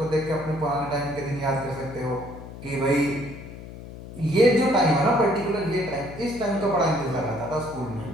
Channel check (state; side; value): noise; left; hum, 13 dB below the sound